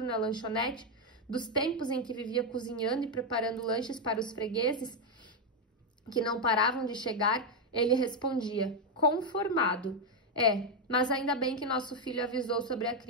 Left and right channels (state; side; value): normal; both; correlation 0.03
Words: na lanchonete, dos tempos em que vivia cozinhando e preparando lanches para os fregueses, que não paravam de chegar, ele respondia, conformado. Mas ainda bem que nosso filho avisou sobre a